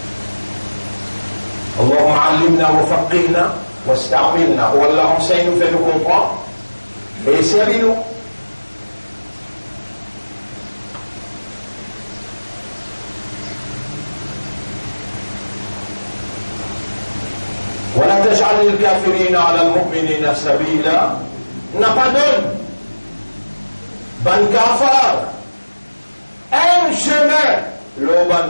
اللهم علمنا وفقهنا واستعملنا, ou Allah enseigne nous, fait nous comprendre et servis-nous. ولا تجعل الكافرين على المؤمنين سبيلا, n'a pas donné ban kafar un chemin le ban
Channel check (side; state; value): both; inverted; correlation -1.00